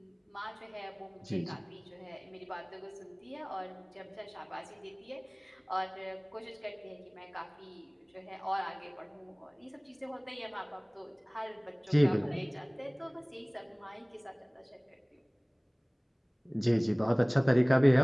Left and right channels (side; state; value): both; identical; correlation 1.00